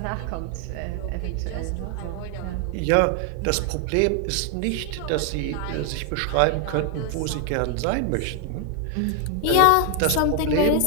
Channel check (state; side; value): different; both; correlation 0.00